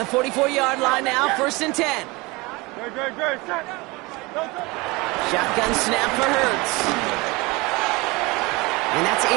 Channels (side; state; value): left; quieter; 24.2 dB